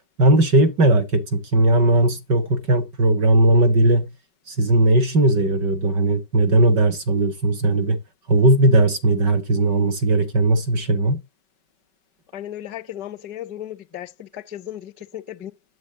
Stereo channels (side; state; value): left; late; 5.3 ms